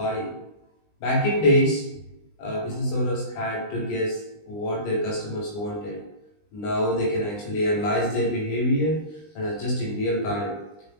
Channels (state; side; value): late; right; 20 ms